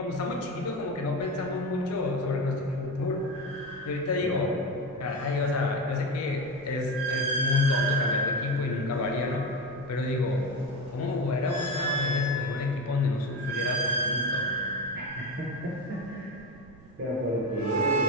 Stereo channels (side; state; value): right; noise; rumble, 21 dB below the sound